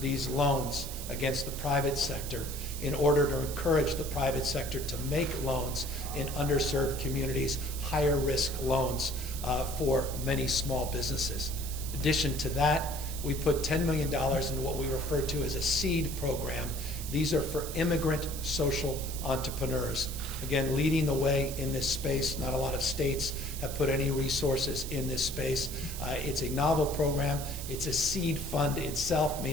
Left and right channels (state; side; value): noise; right; hiss, 9 dB below the sound